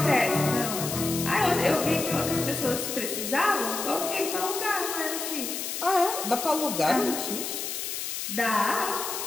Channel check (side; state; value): left; noise; hiss, 4 dB below the sound